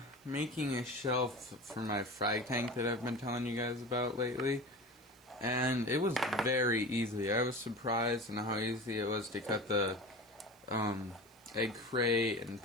making a shelf for my frag tank that I've been telling you guys about lately, and it was very easy. I was surprised at how easy it was to cut the egg crate and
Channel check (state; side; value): noise; right; hiss, 28 dB below the sound